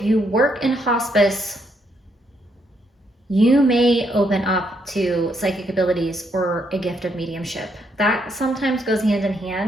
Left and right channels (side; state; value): both; normal; correlation 0.75